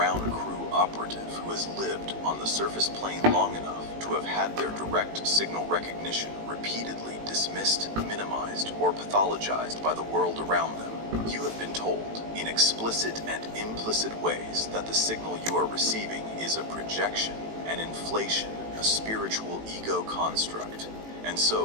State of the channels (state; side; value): late; left; 18 ms